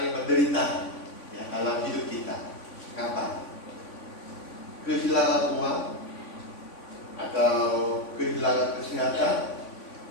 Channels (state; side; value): late; right; 3.5 ms